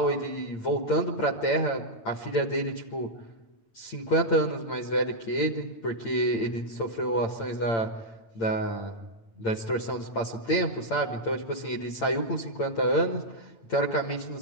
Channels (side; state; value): right; late; 8.8 ms